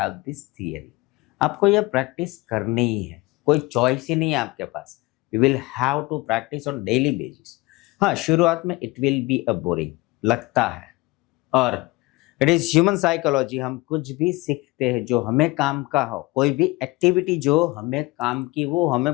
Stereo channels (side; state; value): right; quieter; 22.4 dB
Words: this theory. आपको यह practice करनी ही है, कोई choice ही नहीं है आपके पास। You will have to practice on daily basis. हाँ, शुरुआत में it will be a boring लगता है, और इट इज ह्यूमन साइकोलॉजी। हम कुछ भी सीखते हैं जो हमें काम का हो, कोई भी एक्टिविटी जो हमें काम की, वो